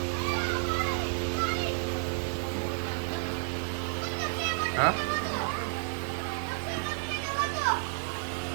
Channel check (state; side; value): silent; left; 57 dB below the other